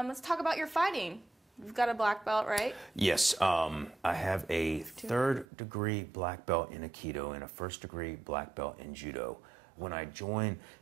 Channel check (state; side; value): drops out; left; at 5.5 s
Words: talk about your fighting. You've got a black belt, right? Yes, I have a 3rd-degree black belt in Aikido and a 1st-degree black belt in Judo. When I join